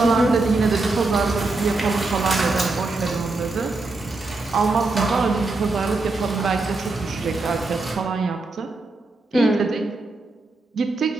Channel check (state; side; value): quieter; left; 3.3 dB